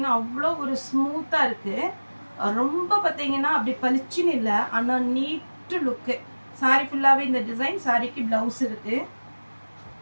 அவ்வளோ ஒரு ஸ்மூத்தா இருக்கு. ரொம்ப பாத்தீங்கன்னா அப்படி பளிச்சுன்னு இல்ல, ஆனா நீட் லுக். saree ஃபுல்லாவே இந்த டிசைன். சாரிக்கு பிளவுஸ் இருக்கு.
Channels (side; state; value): both; inverted; correlation -1.00